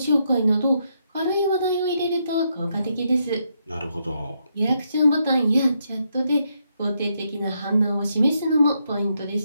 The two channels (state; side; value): inverted; both; correlation -0.79